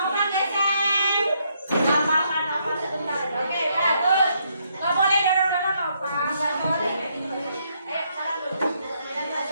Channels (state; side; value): inverted; both; correlation -0.74